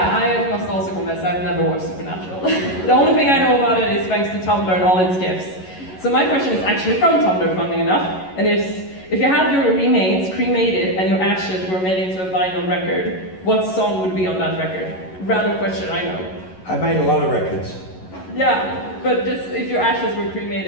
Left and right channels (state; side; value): late; right; 11 ms